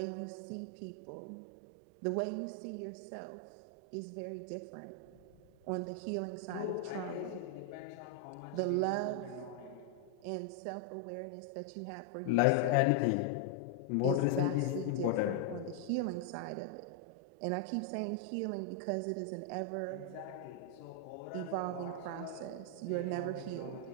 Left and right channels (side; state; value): both; different; correlation 0.00